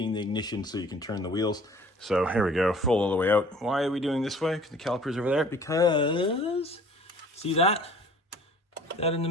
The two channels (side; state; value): both; normal; correlation 0.50